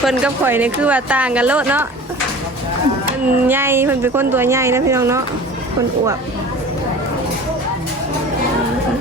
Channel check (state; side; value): normal; both; correlation 0.40